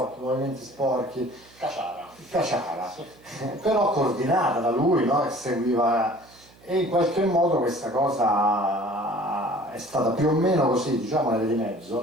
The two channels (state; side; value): noise; right; hum, 27 dB below the sound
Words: movimenti sporchi, caciara, però coordinata da lui, no? Che seguiva, e in qualche modo questa cosa è stata più o meno così, diciamo nelle di mezzo,